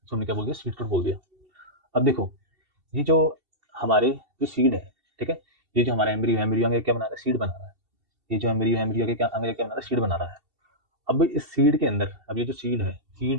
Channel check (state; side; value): late; left; 2.7 ms